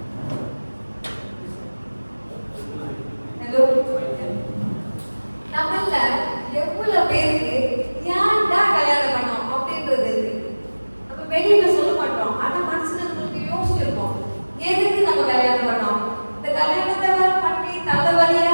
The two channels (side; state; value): both; inverted; correlation -1.00